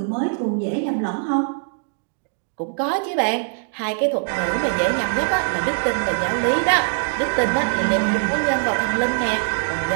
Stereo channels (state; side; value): silent; left; digital silence